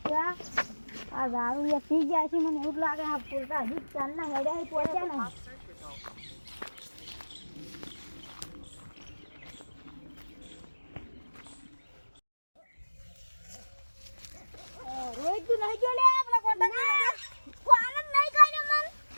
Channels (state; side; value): inverted; both; correlation -1.00